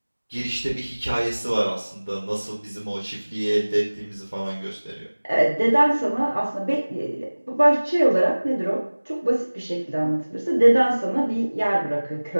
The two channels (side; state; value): both; inverted; correlation -1.00